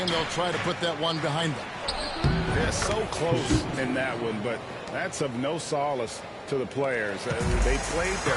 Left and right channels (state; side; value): identical; both; correlation 1.00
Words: they'll try to put that one behind them. They're so close in that one, but that's of no solace to the players. They played